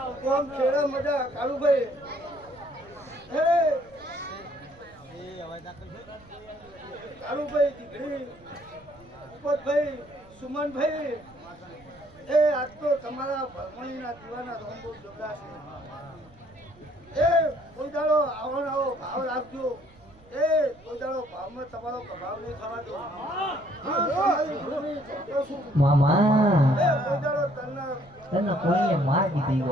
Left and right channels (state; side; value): noise; right; rumble, 26 dB below the sound